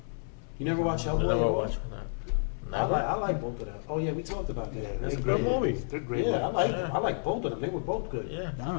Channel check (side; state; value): right; silent; 57 dB below the other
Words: You never watch Hellboy? I never Hellboy? watched that. I like both of them. Oh yeah, we talked about that. Yeah, That's It's a great. good movie. They're great. Yeah, movies. I like both of them. They were both good. Yeah. I don't